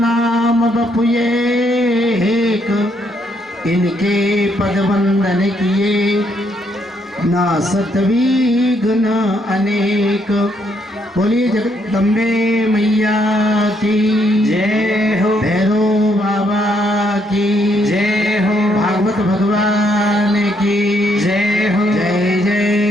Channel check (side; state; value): both; normal; correlation 0.73